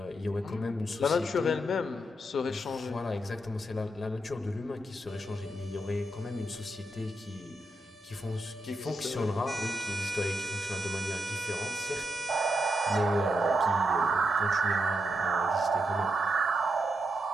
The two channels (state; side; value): normal; both; correlation 0.83